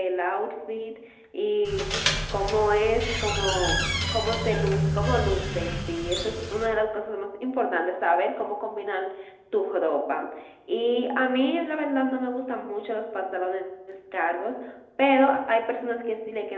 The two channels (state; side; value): identical; both; correlation 1.00